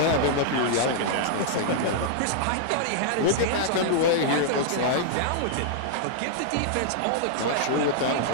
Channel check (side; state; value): both; different; correlation -0.01